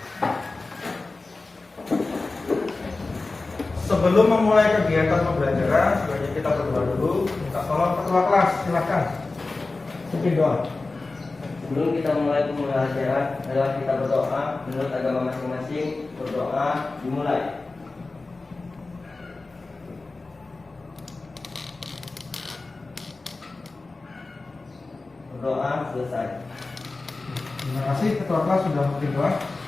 Sebelum memulai kegiatan pembelajaran, sebaiknya kita berdoa dulu. Minta tolong ketua kelas, silakan. Pimpin doa. Sebelum kita mulai pembelajaran, adalah kita berdoa menurut agama masing-masing. Berdoa dimulai. Berdoa selesai. Terima kasih ketua kelas sudah memberi doa.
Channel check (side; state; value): right; quieter; 3.5 dB